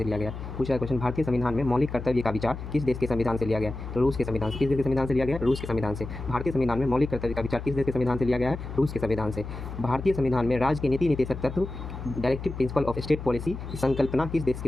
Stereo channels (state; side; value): noise; left; hum, 9 dB below the sound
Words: लिया गया? पूछा है क्वेश्चन, भारतीय संविधान में मौलिक कर्तव्य का विचार किस देश के संविधान से लिया गया? तो रूस के संविधान से। किस देश के संविधान से लिया गया? रूस के संविधान से। भारतीय संविधान में मौलिक कर्तव्य का विचार किस देश के संविधान से लिया गया है? रूस के संविधान से। भारतीय संविधान में राज्य के नीति निर्देशक तत्व, directive principle of state policy की संकल्पना किस देश